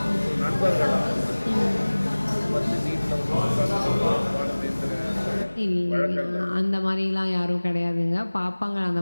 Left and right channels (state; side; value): inverted; both; correlation -1.00